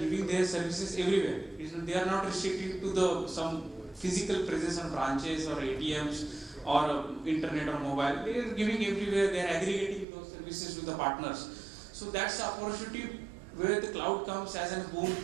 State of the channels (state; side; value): drops out; left; at 10.1 s